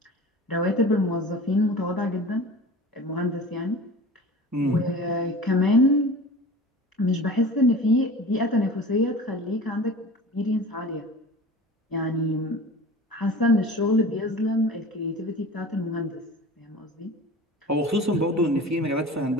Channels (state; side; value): normal; both; correlation 0.38